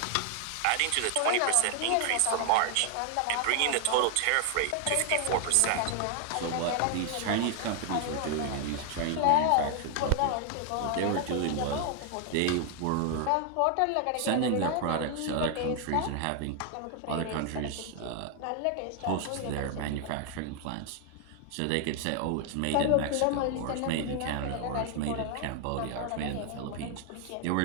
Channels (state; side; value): different; both; correlation 0.00